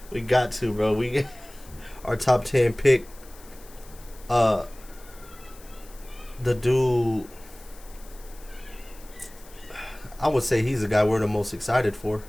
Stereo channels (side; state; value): left; noise; hiss, 22 dB below the sound